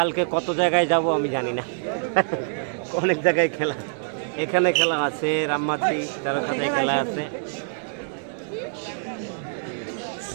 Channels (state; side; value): silent; left; 62 dB below the other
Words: কত জায়গায় যাব আমি জানি না, অনেক জায়গায় খেলা, এখানে খেলা আছে, রামমাটি তেরোখাতায় খেলা আছে।